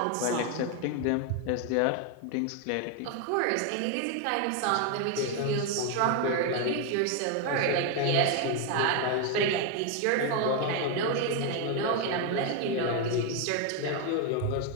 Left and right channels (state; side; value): different; both; correlation 0.01